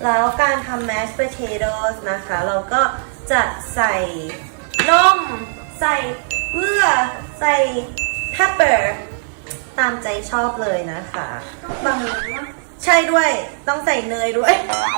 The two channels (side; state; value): left; silent; digital silence